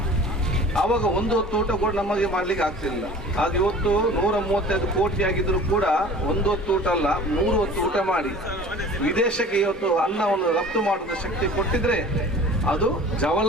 ಆವಾಗ ಒಂದು ಹೊತ್ತು ಊಟ ಕೂಡ ನಮಗೆ ಮಾಡಲಿಕ್ಕೆ ಆಗ್ತಿರಲಿಲ್ಲ. ಅದು ಇವತ್ತು 135 ಕೋಟಿ ಆಗಿದ್ರು ಕೂಡ ಒಂದು ಹೊತ್ತು ಊಟ ಅಲ್ಲ, 3 ಹೊತ್ತು ಊಟ ಮಾಡಿ ವಿದೇಶಕ್ಕೆ ಇವತ್ತು ಅನ್ನವನ್ನು ರಫ್ತು ಮಾಡುವ ಶಕ್ತಿ ಕೊಟ್ಟಿದ್ರೆ ಅದು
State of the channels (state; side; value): normal; both; correlation 0.43